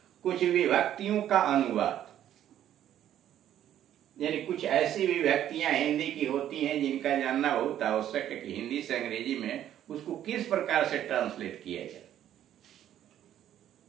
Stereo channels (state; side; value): quieter; left; 11.2 dB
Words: कुछ विभक्तियों का अनुवाद, यानी कुछ ऐसी विभक्तियां हिंदी की होती हैं जिनका जानना बहुत आवश्यक है कि हिंदी से अंग्रेजी में उसको किस प्रकार से ट्रांसलेट किया जाए।